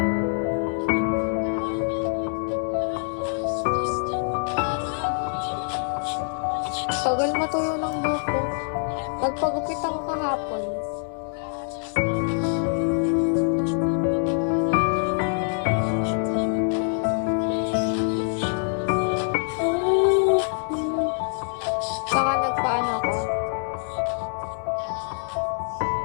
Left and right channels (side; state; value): right; silent; 62 dB below the other